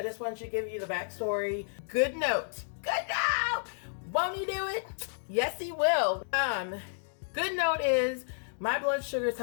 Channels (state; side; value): silent; right; digital silence